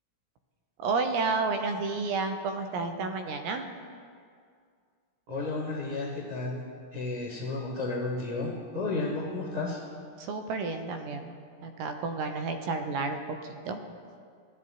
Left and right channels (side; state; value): left; late; 17 ms